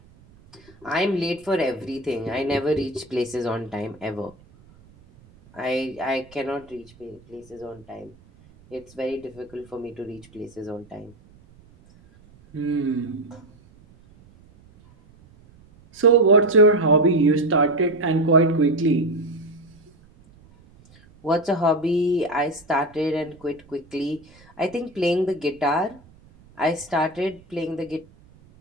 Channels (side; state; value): right; noise; rumble, 26 dB below the sound